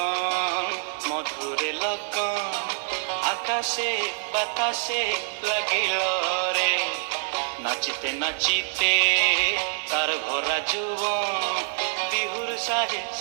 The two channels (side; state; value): left; silent; digital silence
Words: মধুরে লগন, আকাশে বাতাসে লাগিল রে, নাচিতে নাচিতে তার ভরা যৌবন, বিহুর সাজে